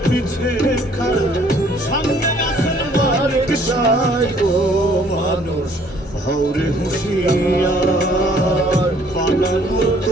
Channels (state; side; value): normal; both; correlation 0.60